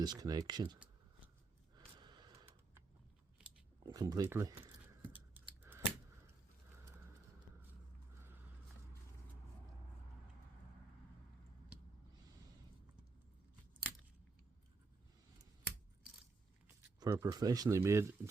connection completely. For a professionally made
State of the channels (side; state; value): left; quieter; 3.9 dB